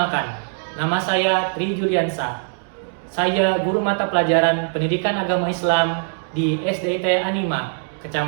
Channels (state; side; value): silent; left; 65 dB below the other